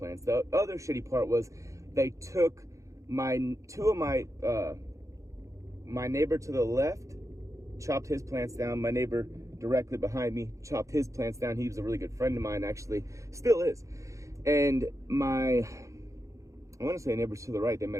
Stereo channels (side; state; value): left; late; 0.15 ms